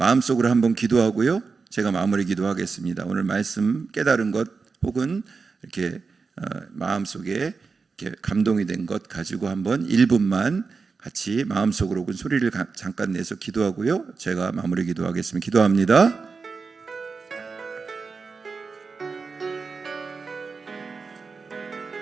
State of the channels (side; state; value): left; quieter; 4.7 dB